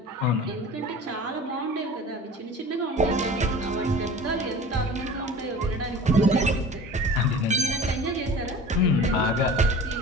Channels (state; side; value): normal; both; correlation 0.40